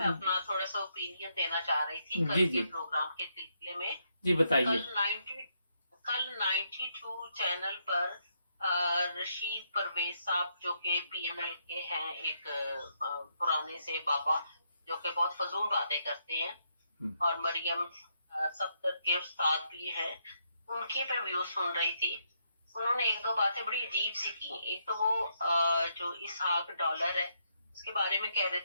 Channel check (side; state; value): both; inverted; correlation -0.77